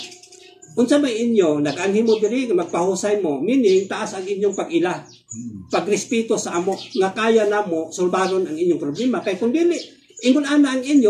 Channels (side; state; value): both; identical; correlation 1.00